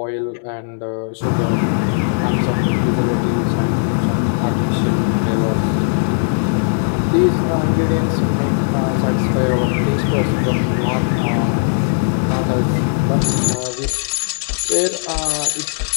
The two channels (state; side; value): silent; right; digital silence